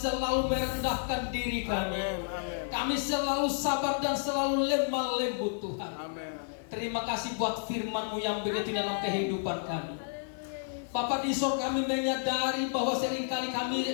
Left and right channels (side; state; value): right; silent; digital silence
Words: merendahkan diri kami. Amin. Amin. Kami selalu sabar dan selalu lemah lembut Tuhan. Amin. Terima kasih buat firman-Mu yang begitu dalam kehidupan kami. Bapa di sorga, kami menyadari bahwa seringkali